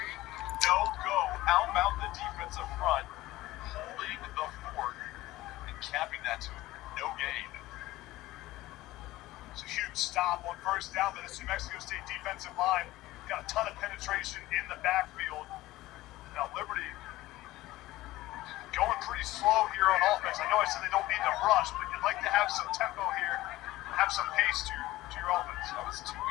No go. How about the defensive front holding the fort and capping that to no gain? It's a huge stop on first down by the New Mexico State defensive line. Got a ton of penetration in the backfield. Now, Liberty going pretty slow here on offense. I know I said they don't need to rush, but you'd like to have some tempo here, have some pace to your offense. That was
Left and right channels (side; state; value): right; quieter; 17.2 dB